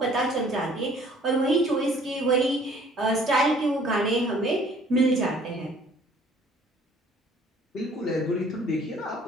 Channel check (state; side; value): normal; both; correlation 0.56